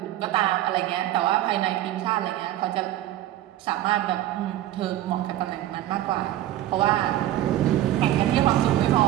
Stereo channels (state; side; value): quieter; left; 13.8 dB